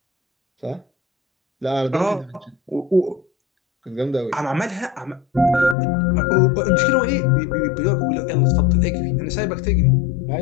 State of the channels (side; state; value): right; drops out; at 5.8 s